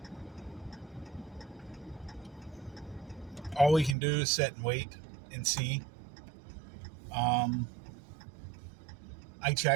we can do is sit and wait and see. I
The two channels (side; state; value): left; drops out; at 4.0 s